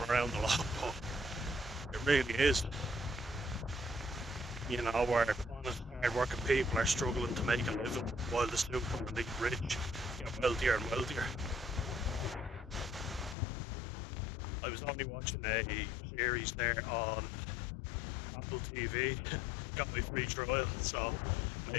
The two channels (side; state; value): right; drops out; at 13.4 s